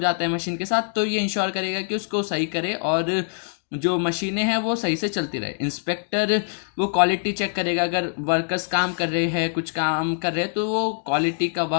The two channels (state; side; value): silent; right; digital silence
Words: है मशीन के साथ, तो ये इंश्योर करेगा कि उसको सही करे और जो मशीनें हैं वो सही से चलती रहे। इंस्पेक्टर, वो क्वालिटी चेक करेगा, अगर वर्कर्स काम कर रहे हैं, कुछ काम कर रहे हैं, तो वो क्वालिटी का